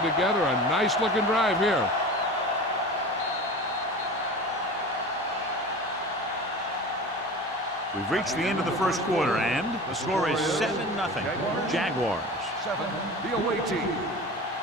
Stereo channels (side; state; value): both; normal; correlation 0.35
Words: together a nice-looking drive here. We've reached the end of the first quarter, and the score is 7-0. Jaguars. 7, the away team.